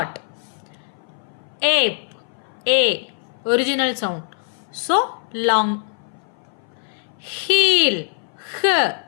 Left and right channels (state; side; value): silent; right; 58 dB below the other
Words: Ape a original sound so long. Heel h